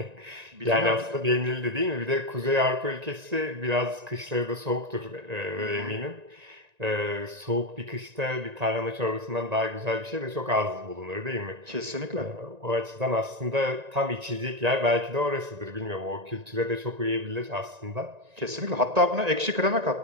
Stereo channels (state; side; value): late; left; 1.9 ms